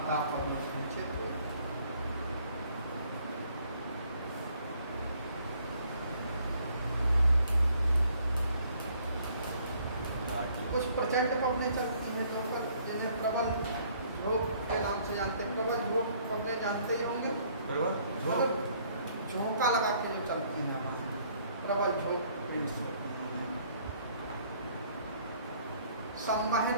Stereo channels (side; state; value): both; inverted; correlation -0.63